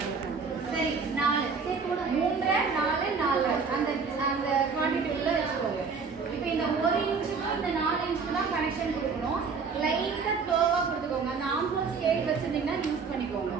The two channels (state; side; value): quieter; left; 5.2 dB